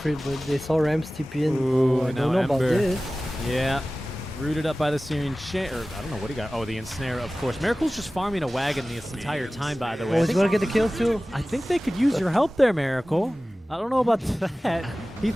but they saw Rams TP in. Ooh, I now don't know about Ember. this. Yeah. Rooted up by the Syrian chain, or I don't know what he got. Oh, the ensnare, of course. Miracle's just farming a wagon this entire time, by the way. Oh, I he's think- gonna get the kill too. I think they could use your help there, Miracle. I don't know about that. He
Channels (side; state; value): both; normal; correlation 0.97